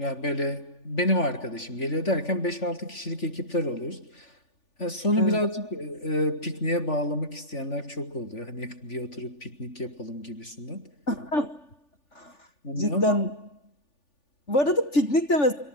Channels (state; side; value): late; right; 3.4 ms